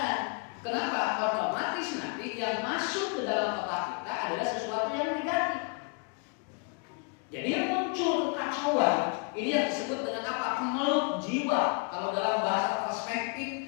Kenapa? Otomatis nanti yang masuk ke dalam otak kita adalah sesuatu yang negatif. Jadi yang muncul kekacauan ini yang disebut dengan apa? Kemelut jiwa. Kalau dalam bahasa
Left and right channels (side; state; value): right; quieter; 37.7 dB